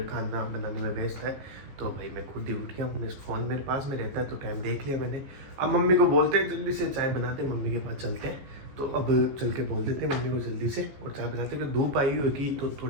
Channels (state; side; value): late; left; 15 ms